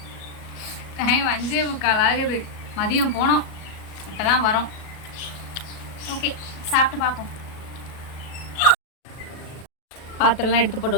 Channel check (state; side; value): late; right; 37 ms